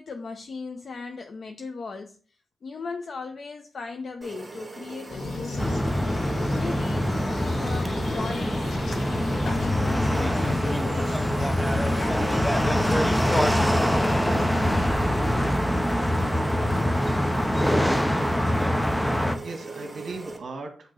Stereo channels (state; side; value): normal; both; correlation 0.95